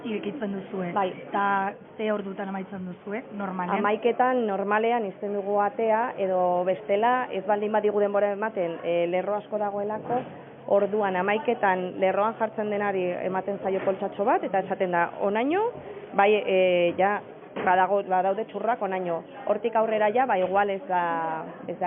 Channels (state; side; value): identical; both; correlation 1.00